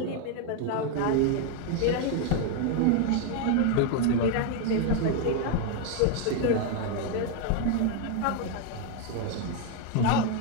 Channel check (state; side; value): different; both; correlation 0.01